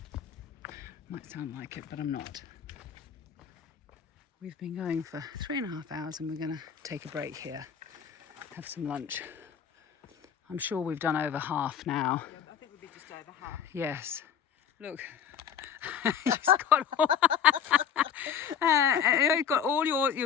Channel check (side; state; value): right; quieter; 8.3 dB